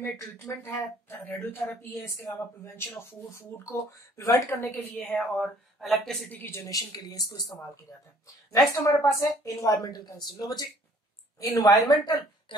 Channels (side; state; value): both; normal; correlation 0.57